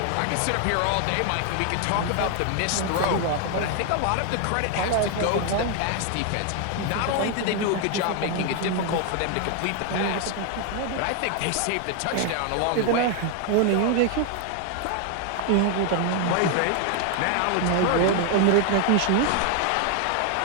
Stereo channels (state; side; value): different; both; correlation 0.00